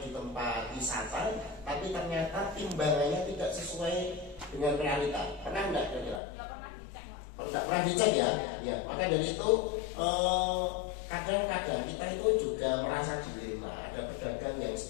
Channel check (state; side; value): drops out; right; at 6.2 s